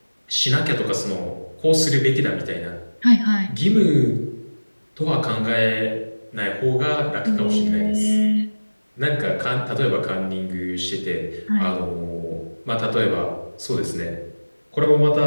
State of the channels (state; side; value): inverted; both; correlation -1.00